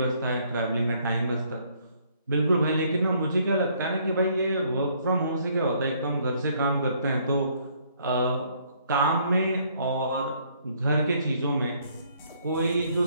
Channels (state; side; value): inverted; both; correlation -0.66